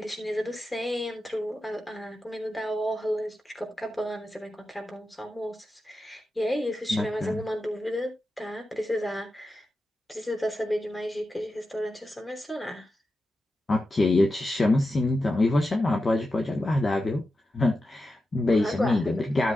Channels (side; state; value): both; normal; correlation 0.90